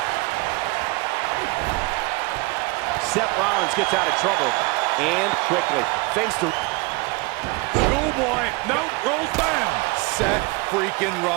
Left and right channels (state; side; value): quieter; left; 25.8 dB